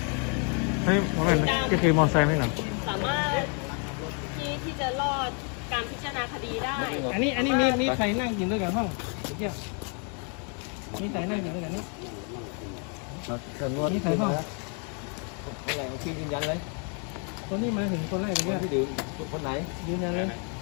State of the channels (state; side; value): quieter; right; 39.1 dB